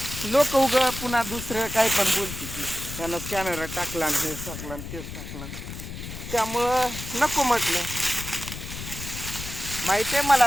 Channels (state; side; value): noise; left; rumble, 9 dB below the sound